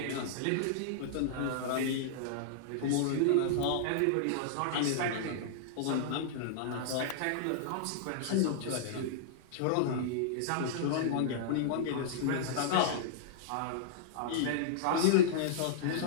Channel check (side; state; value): both; different; correlation -0.02